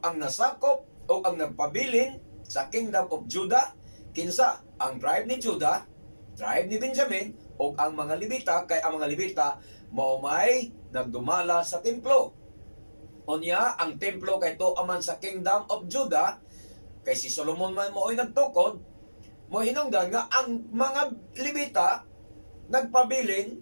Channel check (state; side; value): inverted; both; correlation -1.00